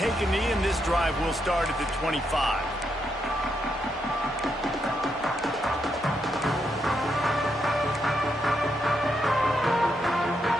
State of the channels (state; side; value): normal; both; correlation 0.80